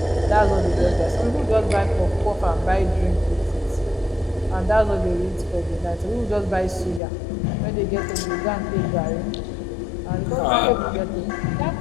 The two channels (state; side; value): drops out; right; at 7.0 s